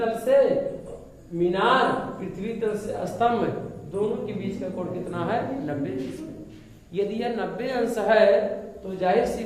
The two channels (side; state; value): both; identical; correlation 1.00